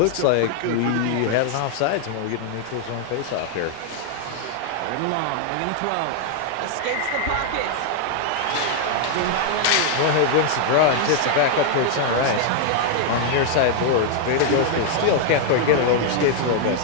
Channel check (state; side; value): different; both; correlation 0.00